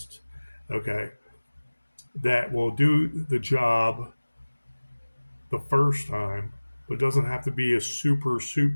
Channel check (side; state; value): both; inverted; correlation -1.00